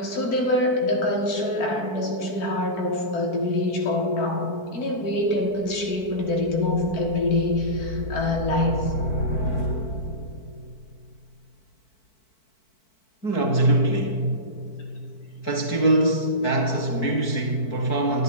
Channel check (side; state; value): right; late; 4.5 ms